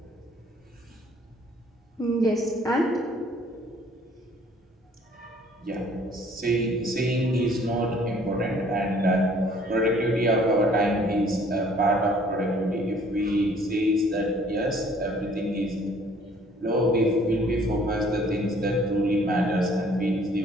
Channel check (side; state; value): both; normal; correlation 0.58